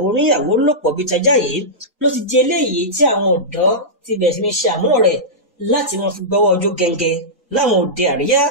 oníyàwó lòpọ̀ bíi tajá yìí ló ti di eléyìí tí àwọn ọ̀dọ́ ti bẹ̀rẹ̀ sí ní ṣe àmúlò rẹ̀ láti wọn fi gbọ́wọ́ ojú gẹ́ngẹ́ láwọn òde àríyá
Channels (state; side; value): normal; both; correlation -0.13